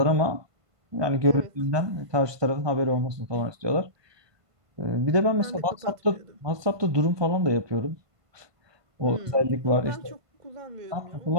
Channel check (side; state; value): left; late; 1.2 ms